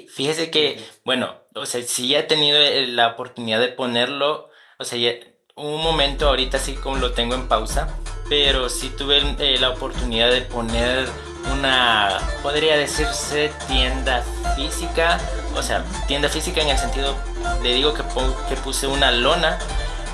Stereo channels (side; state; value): both; identical; correlation 1.00